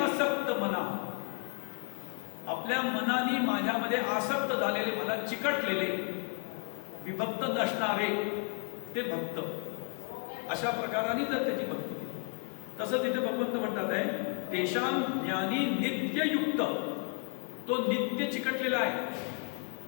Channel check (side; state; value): right; quieter; 38.6 dB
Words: मना. आपल्या मनाने माझ्यामध्ये आसक्त झालेले, मला चिकटलेले, विभक्त नसणारे ते भक्त. अशा प्रकाराने जर त्याची भक्ती केली, तसं तिथे भगवंत म्हणतात आहे तेषां ज्ञानी नित्ययुक्त. तो नित्य चिकटलेला आहे.